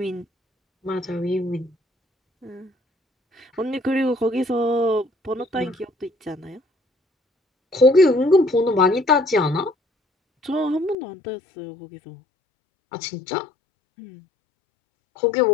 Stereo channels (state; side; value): drops out; right; at 11.0 s